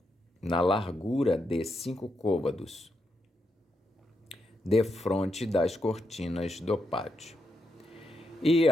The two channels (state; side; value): normal; both; correlation 0.83